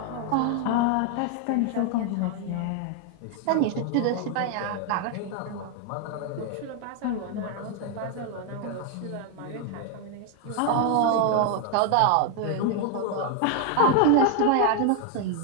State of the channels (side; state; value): both; different; correlation 0.01